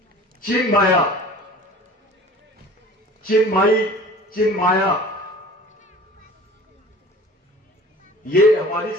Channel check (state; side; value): normal; both; correlation 0.44